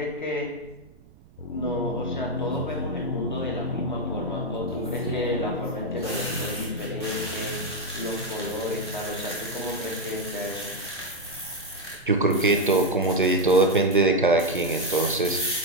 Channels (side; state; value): right; noise; rumble, 25 dB below the sound